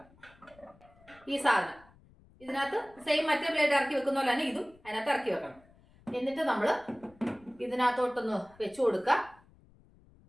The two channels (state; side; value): noise; left; rumble, 27 dB below the sound